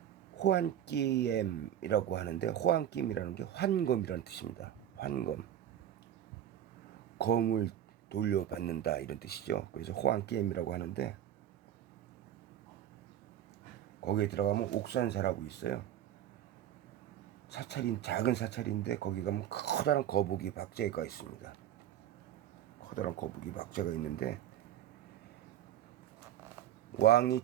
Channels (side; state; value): left; quieter; 11.1 dB